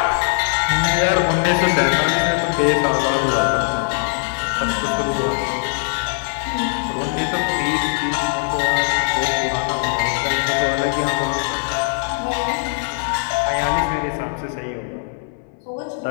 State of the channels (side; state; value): right; silent; digital silence